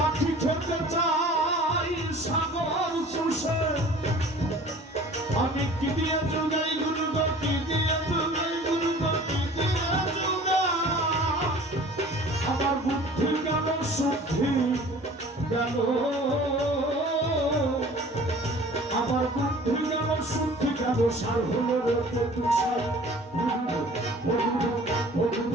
খেতে চাই সাগর চুষে আমি কি দিয়ে চুগাই গুরু কি দিয়ে চুগাই গুরু কি দিয়ে চুগাই আমার বুদ্ধি গেল শুদ্ধি গেল আমার বুদ্ধি গেল শুদ্ধি গেল সার হলো রে তুষার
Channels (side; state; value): both; normal; correlation 0.46